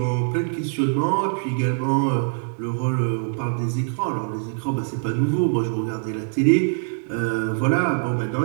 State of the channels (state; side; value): silent; left; digital silence